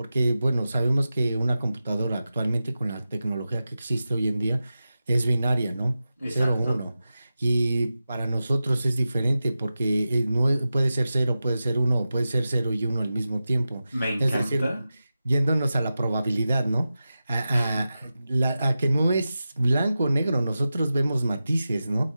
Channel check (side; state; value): both; inverted; correlation -0.93